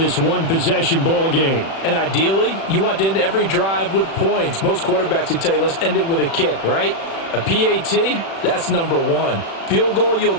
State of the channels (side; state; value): right; late; 36 ms